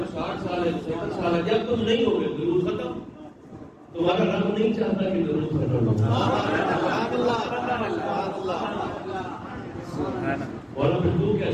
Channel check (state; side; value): identical; both; correlation 1.00